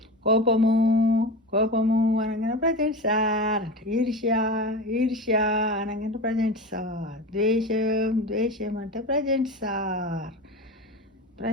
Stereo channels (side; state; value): both; normal; correlation 0.27